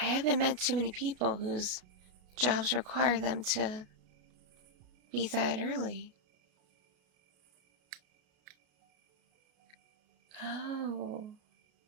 I haven't met too many people whose jobs require them to be that early. Oh.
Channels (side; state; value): left; late; 33 ms